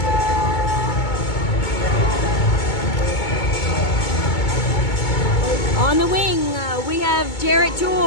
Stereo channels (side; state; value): right; late; 2.2 ms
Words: On the wing, we have Jarrett